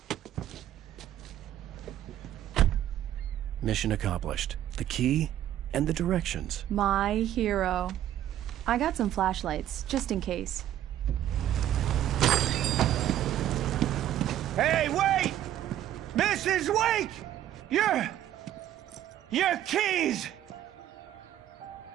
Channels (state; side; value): quieter; left; 12.0 dB